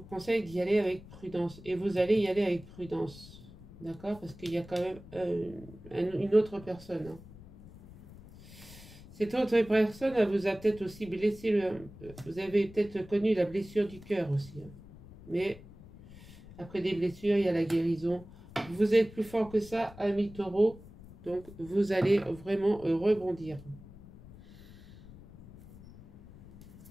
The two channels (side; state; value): left; noise; rumble, 19 dB below the sound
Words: conseille d'y aller avec prudence. Et vous allez y aller avec prudence. D'accord? Parce qu'il y a quand même une autre personne. Hein. Cette autre personne, elle vous a peut-être aussi blessé. Vous avez peut-être connu la blessure du cœur aussi. Hein. Mais après des blessures, il y a la guérison. Vous êtes plus fort que ça, ami taureau. Donc, vous allez vraiment rebondir.